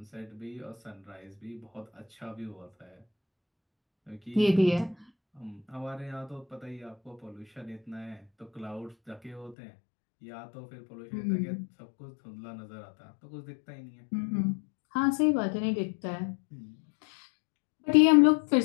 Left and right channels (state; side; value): drops out; right; at 9.6 s